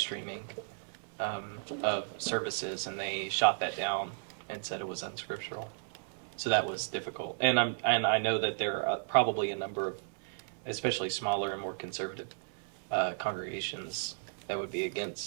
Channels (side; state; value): left; silent; 55 dB below the other